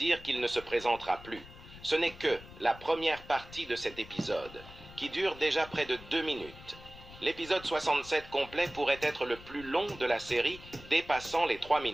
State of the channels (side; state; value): left; noise; rumble, 18 dB below the sound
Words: qu'il ne se présentera plus. Ce n'est que la première partie de cet épisode, qui dure déjà près de 2 minutes. L'épisode 67 complet pourrait être le plus long de la série, dépassant les 3